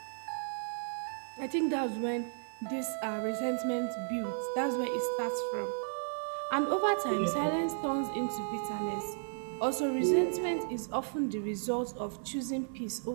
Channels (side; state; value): left; silent; 55 dB below the other